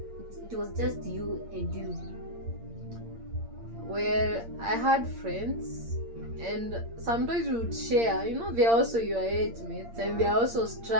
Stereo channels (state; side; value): late; left; 8.7 ms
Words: was just you and you? Well, I had friends, and sometimes we would share. They're also your age mates, and they're also